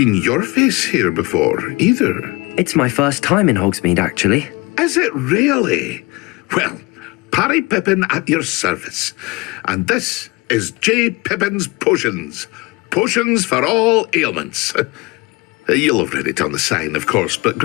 your face here before, either. It's my first time in Hogsmeade, actually. Is it really? Well, Parry Pippin at your service. And this is J. Pippin's Potions. Potions for all ailments. You'll have read it on the sign, of course, but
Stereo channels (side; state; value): right; quieter; 24.7 dB